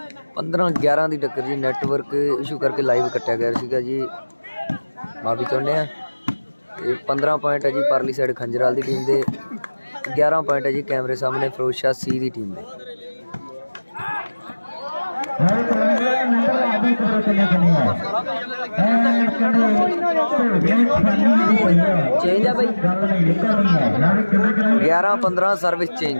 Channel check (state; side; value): inverted; both; correlation -1.00